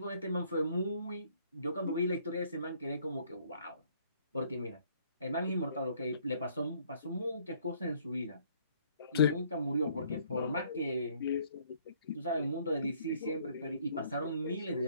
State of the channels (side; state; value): both; inverted; correlation -0.63